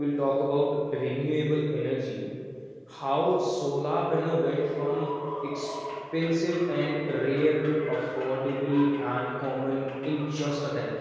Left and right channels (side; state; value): both; identical; correlation 1.00